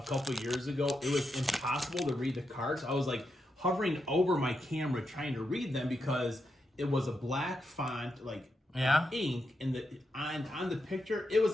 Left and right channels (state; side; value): normal; both; correlation 0.84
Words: couple years ago, it was impossible to read the cards. I was like hovering over my camera trying to read them because it was a black font, like Yeah. ink, and on the picture, it was